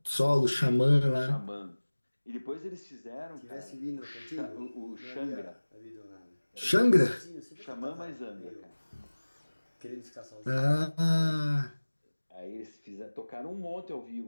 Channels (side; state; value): both; inverted; correlation -1.00